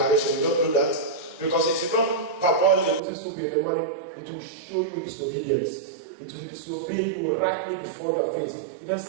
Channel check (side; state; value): left; drops out; at 3.0 s